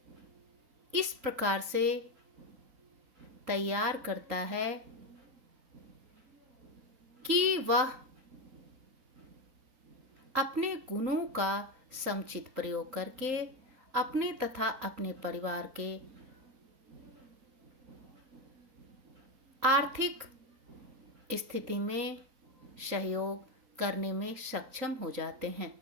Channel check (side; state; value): left; late; 3.8 ms